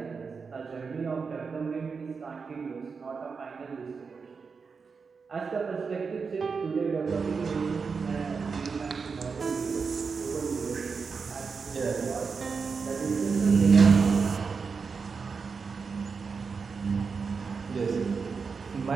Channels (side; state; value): left; quieter; 5.2 dB